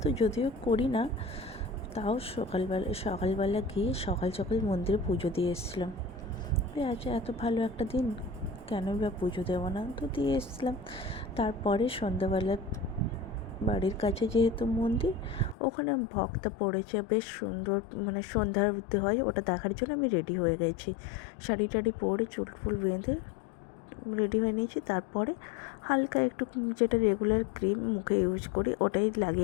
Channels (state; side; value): drops out; right; at 15.6 s